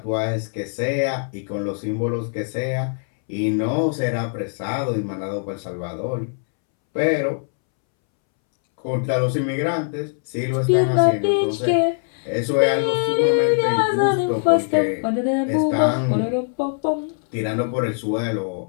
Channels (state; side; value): silent; right; 64 dB below the other